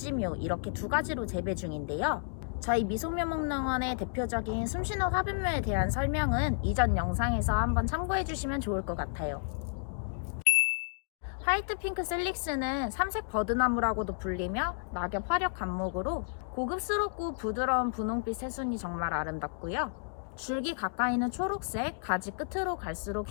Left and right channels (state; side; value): silent; right; digital silence